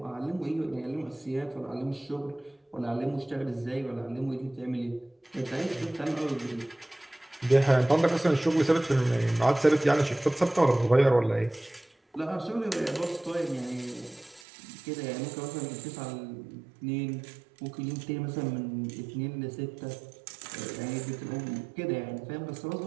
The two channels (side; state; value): left; drops out; at 14.5 s